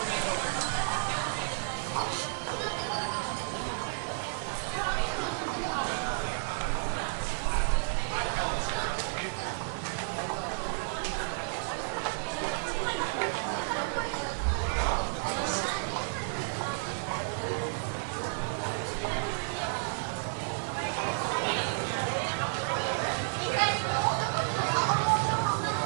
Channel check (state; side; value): silent; left; digital silence